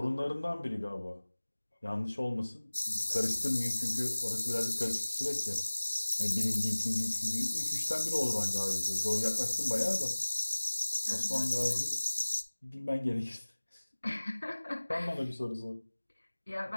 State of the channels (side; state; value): both; inverted; correlation -1.00